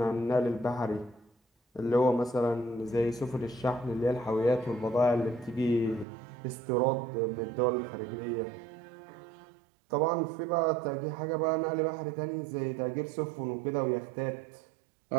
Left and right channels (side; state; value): left; drops out; at 6.1 s